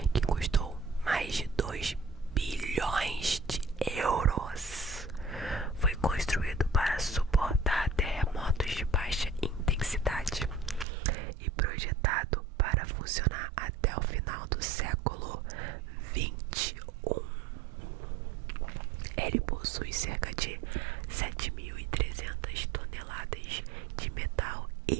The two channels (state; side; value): drops out; left; at 10.9 s